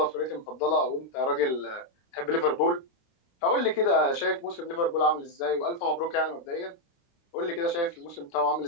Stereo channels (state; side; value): late; right; 29 ms